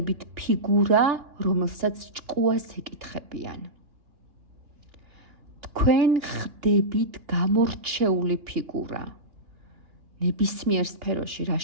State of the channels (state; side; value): late; left; 3.0 ms